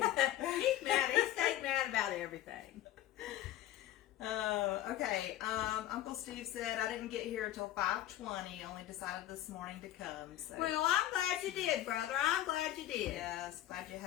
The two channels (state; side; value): quieter; right; 13.6 dB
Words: mad. He stayed mad about everything. Okay. Uncle Steve said I didn't get here until 5:20. Only decided this morning to come. So. Well, I'm glad you did, brother. I'm glad you did. Yes, glad you